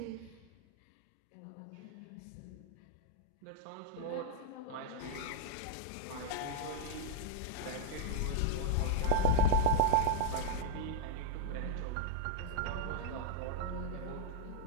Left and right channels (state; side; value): different; both; correlation -0.02